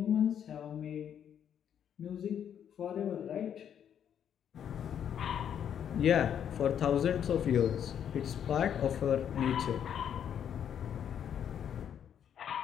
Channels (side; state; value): right; quieter; 9.0 dB